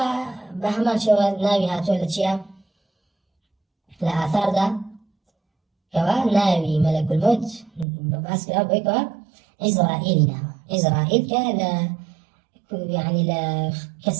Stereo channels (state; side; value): drops out; left; at 7.9 s